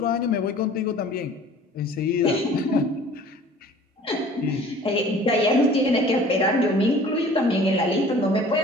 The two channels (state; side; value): normal; both; correlation 0.48